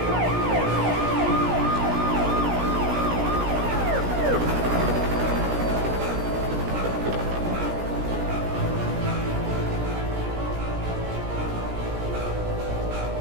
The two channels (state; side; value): late; left; 16 ms